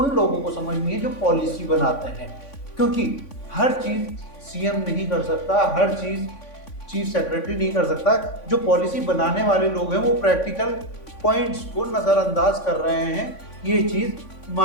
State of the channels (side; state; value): right; late; 3.5 ms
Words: लोगों को समझनी है जो पॉलिसी बनाते हैं, क्योंकि हर चीज़ सीएम नहीं कर सकता, हर चीज़ चीफ सेक्रेटरी नहीं कर सकता। जो पॉलिसी बनाने वाले लोग हैं वो प्रैक्टिकल पॉइंट्स को नज़रअंदाज कर रहे हैं। ये चीज़